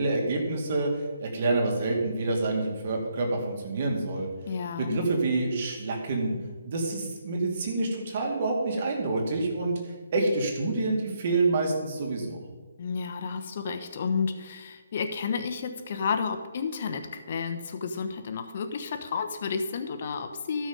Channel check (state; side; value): inverted; both; correlation -0.73